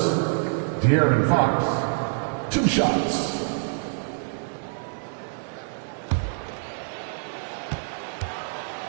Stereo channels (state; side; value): silent; left; digital silence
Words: De'Aaron Fox, 2 shots.